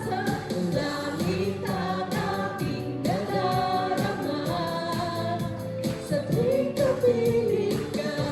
ang langit ang aking nadarama. Sa tuwing kapiling ka,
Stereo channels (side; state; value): both; identical; correlation 1.00